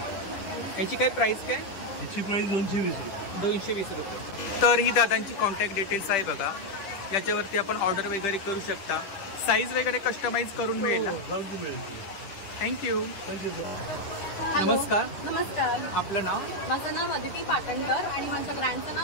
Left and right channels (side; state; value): right; late; 10 ms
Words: याची काय प्राइस काय? याची प्राइस 220 रुपये. 220 रुपये. तर ही दादांची कॉन्टॅक्ट डिटेल्स आहे बघा, याच्यावरती आपण ऑर्डर वगैरे करू शकता. साईज वगैरे कस्टमाइज करून मिळेल ना? मिळेल. थँक्यू. Thank you sir. नमस्कार. नमस्कार. आपलं नाव? माझं नाव अदिती पाटणकर आणि माझ्या ब्रँडचं